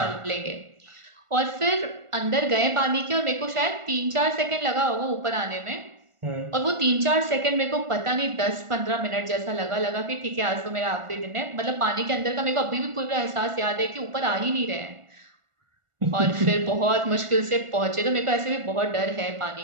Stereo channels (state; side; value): late; left; 1.4 ms